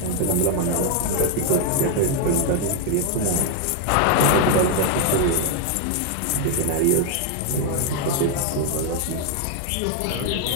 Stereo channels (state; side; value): different; both; correlation 0.00